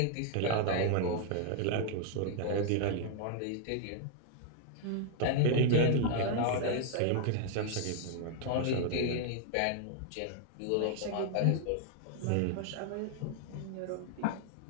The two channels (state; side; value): different; both; correlation 0.00